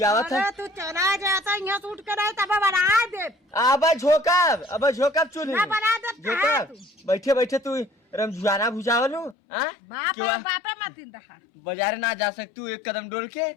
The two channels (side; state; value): right; drops out; at 9.3 s